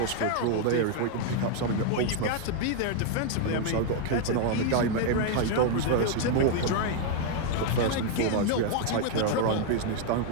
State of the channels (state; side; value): different; both; correlation 0.00